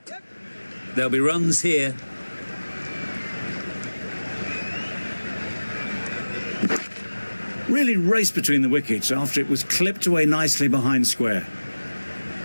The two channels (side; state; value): both; inverted; correlation -1.00